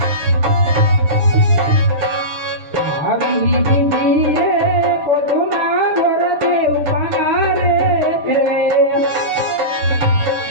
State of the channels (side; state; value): left; late; 6.7 ms